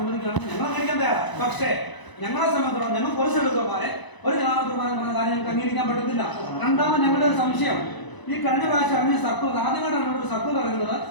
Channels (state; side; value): late; right; 1.0 ms